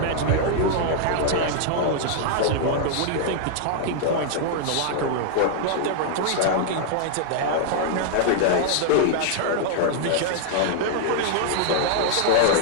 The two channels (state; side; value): different; both; correlation -0.01